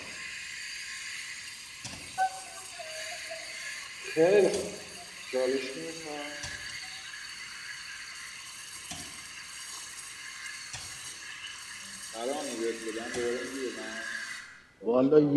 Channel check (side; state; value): both; identical; correlation 1.00